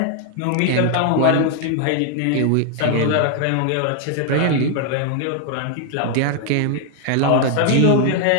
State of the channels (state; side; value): different; both; correlation 0.00